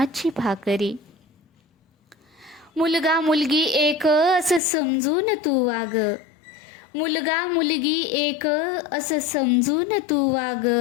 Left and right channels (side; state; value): right; drops out; at 4.6 s